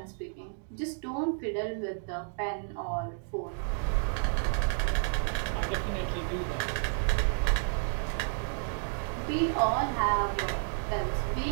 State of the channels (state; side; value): silent; left; 55 dB below the other